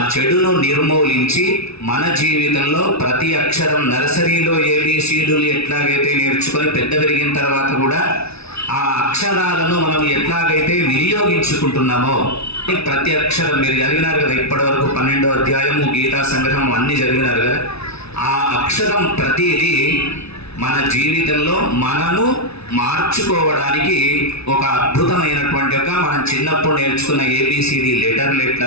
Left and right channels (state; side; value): late; right; 0.79 ms